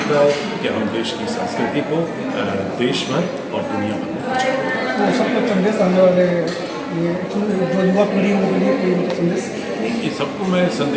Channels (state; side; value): identical; both; correlation 1.00